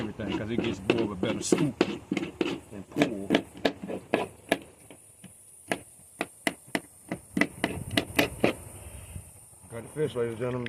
because it gets more of a better scoop and pull. Got the fish, ladies and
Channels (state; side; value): identical; both; correlation 1.00